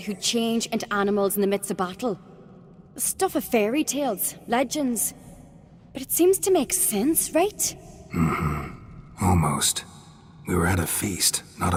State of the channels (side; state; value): both; identical; correlation 1.00